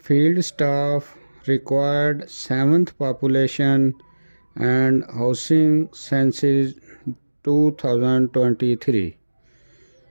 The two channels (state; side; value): inverted; both; correlation -1.00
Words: field staff required 7th population and housing census 2023،